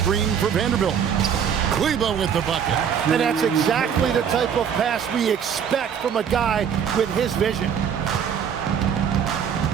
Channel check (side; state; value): left; quieter; 7.9 dB